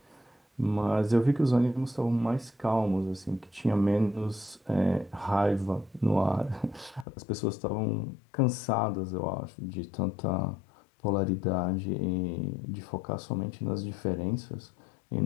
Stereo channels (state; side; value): drops out; right; at 7.1 s